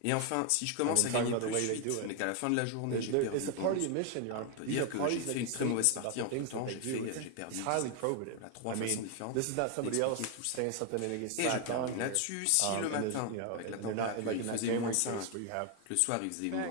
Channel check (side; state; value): both; different; correlation 0.01